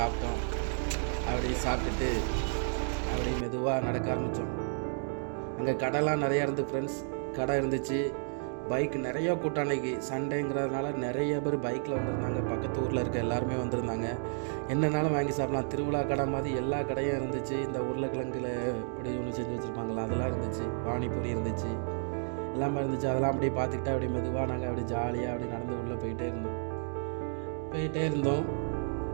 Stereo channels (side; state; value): left; silent; 57 dB below the other